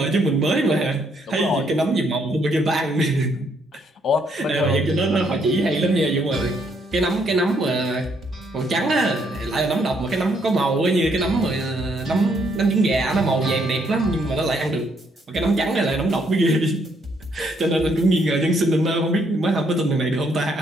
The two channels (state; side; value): normal; both; correlation 0.71